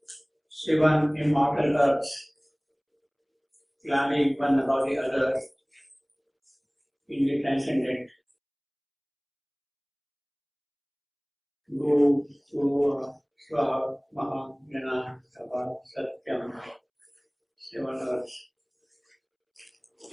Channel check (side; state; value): both; identical; correlation 1.00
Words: seven immortal earths climbing one above the other in the transcendent. Go to Swa, Maha, Jana, Sabha, Satyam, seven earths.